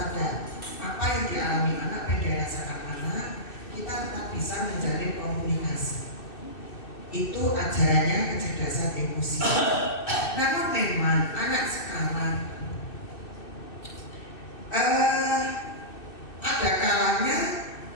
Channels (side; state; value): right; late; 2.6 ms